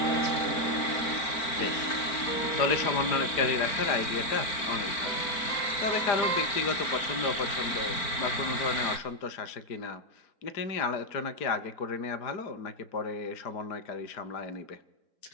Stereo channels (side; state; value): right; late; 4.4 ms